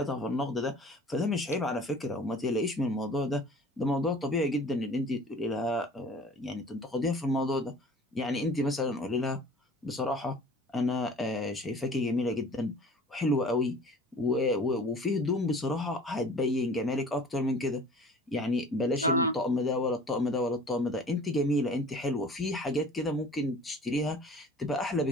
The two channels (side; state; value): both; normal; correlation 0.45